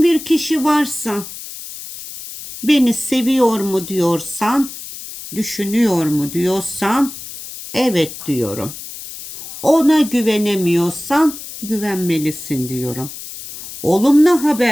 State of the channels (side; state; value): left; noise; hiss, 12 dB below the sound